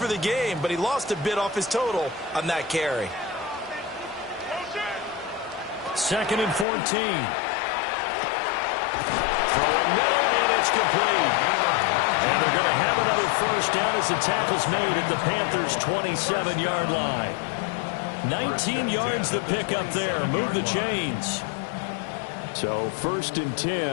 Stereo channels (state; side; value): drops out; right; at 6.7 s